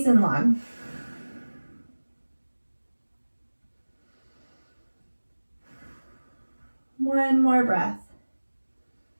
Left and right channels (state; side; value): inverted; both; correlation -1.00